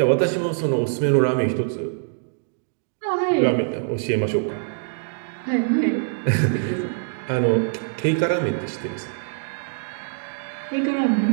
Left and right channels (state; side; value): silent; left; digital silence